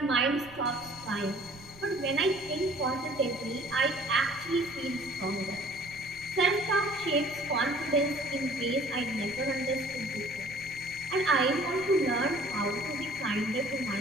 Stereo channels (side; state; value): right; noise; rumble, 21 dB below the sound